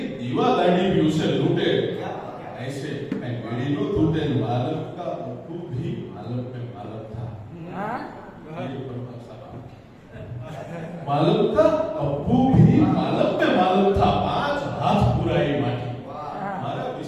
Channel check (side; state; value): both; identical; correlation 1.00